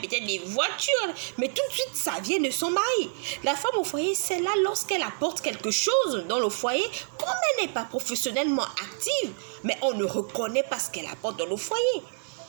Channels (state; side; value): silent; left; 60 dB below the other